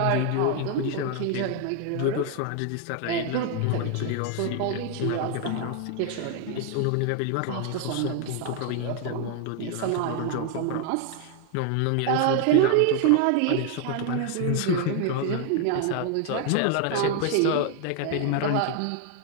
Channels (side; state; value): both; different; correlation 0.00